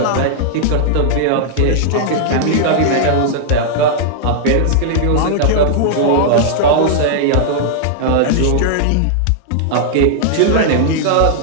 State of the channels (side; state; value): both; different; correlation -0.01